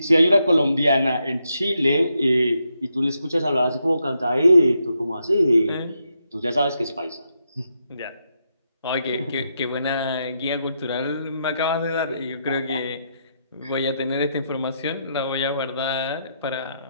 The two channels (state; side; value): inverted; both; correlation -0.81